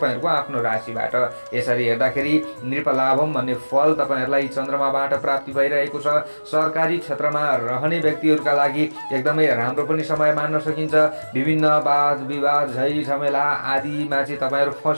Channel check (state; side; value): inverted; both; correlation -1.00